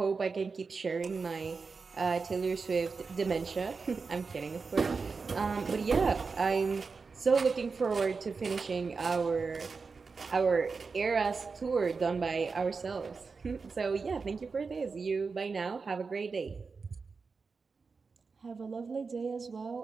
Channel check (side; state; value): left; quieter; 4.7 dB